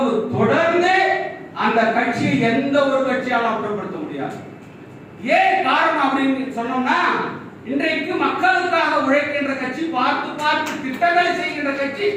தொடர்ந்து அந்த கட்சியை எந்த ஒரு கட்சியாலும் அப்புறப்படுத்த முடியாது. ஏன் காரணம் அப்படின்னு சொன்னோம்னா, இன்றைக்கு மக்களுக்காக உழைக்கின்ற கட்சி, பார்த்து பார்த்து திட்டங்களை செய்கின்ற கட்சி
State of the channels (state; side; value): identical; both; correlation 1.00